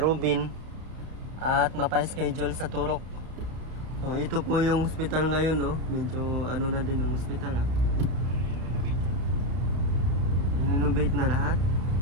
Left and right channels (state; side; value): late; left; 32 ms